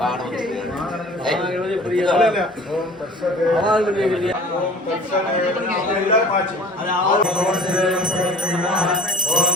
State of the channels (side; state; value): both; normal; correlation 0.45